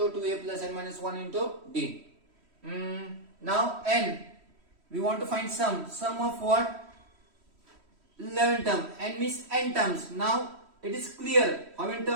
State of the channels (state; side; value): late; left; 3.1 ms